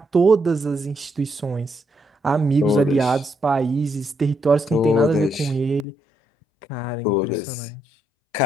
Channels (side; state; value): right; drops out; at 5.9 s